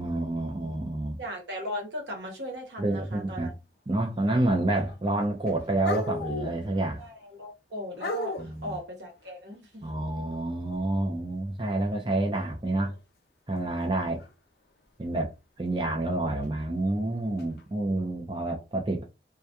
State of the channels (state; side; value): normal; both; correlation 0.63